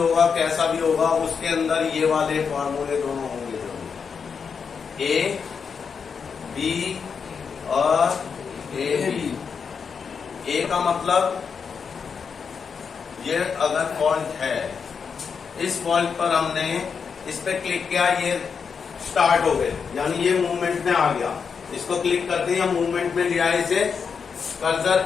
कैसा भी होगा, उसके अंदर ये वाले फॉर्मूले दोनों होंगे जरूर, ए बी और ए बी। ए का मतलब ये अगर फॉल्ट है, इस फॉल्ट पर हमने इस पे क्लिक किया, ये स्टार्ट हो गए, यानी ये मूवमेंट में आ गया। इसको क्लिक करते ही मूवमेंट में लिया इसे।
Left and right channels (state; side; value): quieter; right; 6.1 dB